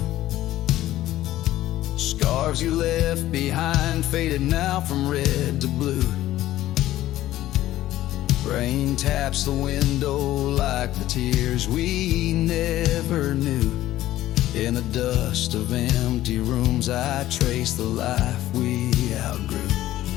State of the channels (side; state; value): right; quieter; 14.5 dB